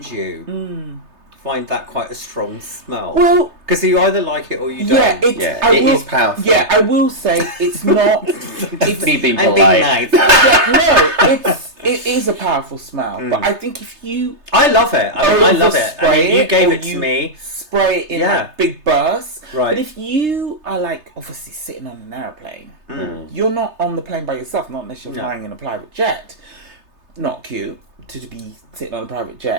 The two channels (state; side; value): late; left; 3.3 ms